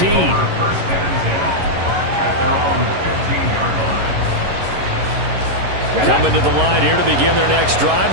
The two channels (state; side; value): late; left; 11 ms